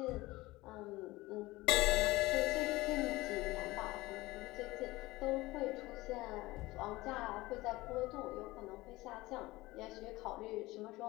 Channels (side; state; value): right; quieter; 19.7 dB